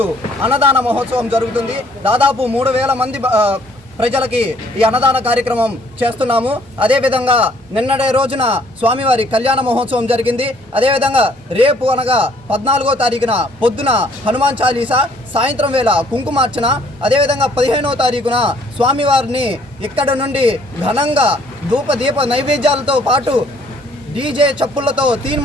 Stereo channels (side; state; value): both; normal; correlation 0.61